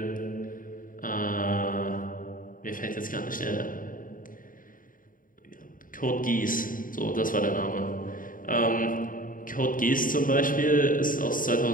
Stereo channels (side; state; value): right; late; 0.40 ms